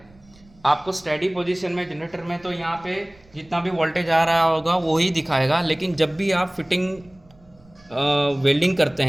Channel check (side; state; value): right; noise; rumble, 28 dB below the sound